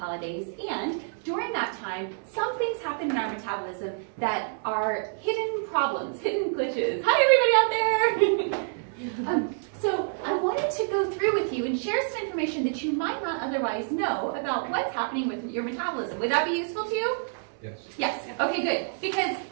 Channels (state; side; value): silent; left; 60 dB below the other